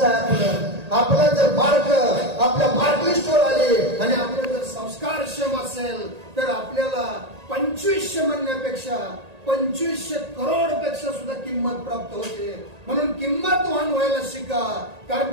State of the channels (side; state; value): left; late; 1.8 ms